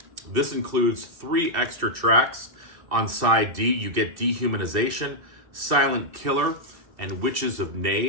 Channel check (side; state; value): left; late; 2.7 ms